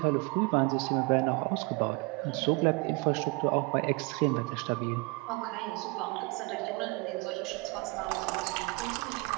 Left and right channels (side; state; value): left; quieter; 26.7 dB